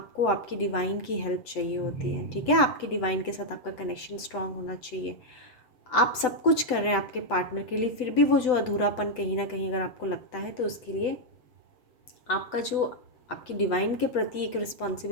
आपकी डिवाइन की हेल्प चाहिए होती है। ठीक है, आपकी डिवाइन के साथ आपका कनेक्शन स्ट्रांग होना चाहिए। आप सब कुछ कर रहे हैं आपके पार्टनर के लिए, फिर भी वो जो अधूरापन कहीं ना कहीं अगर आपको लगता है, तो उसके लिए आपका जो आपकी डिवाइन के प्रति एक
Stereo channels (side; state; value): right; late; 8.0 ms